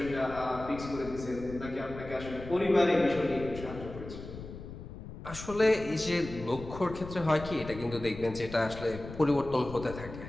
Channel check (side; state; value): left; noise; rumble, 12 dB below the sound